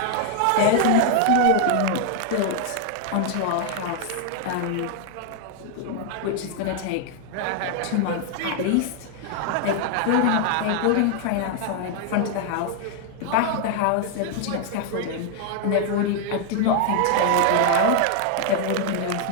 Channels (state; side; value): different; both; correlation 0.00